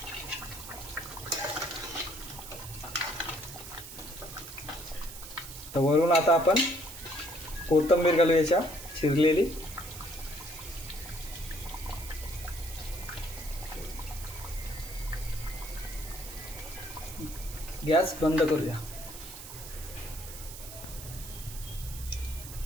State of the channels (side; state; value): right; noise; hiss, 12 dB below the sound